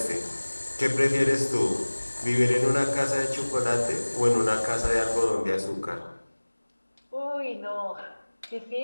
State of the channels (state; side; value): inverted; both; correlation -1.00